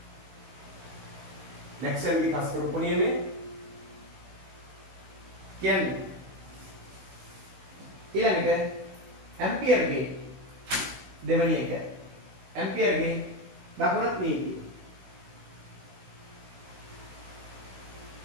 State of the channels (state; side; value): late; left; 16 ms